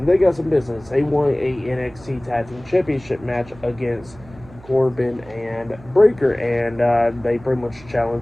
they got some business. They won a NXT Tag Team Championship match against Corbin and Breaker. And they pretty much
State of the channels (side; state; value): right; noise; hum, 21 dB below the sound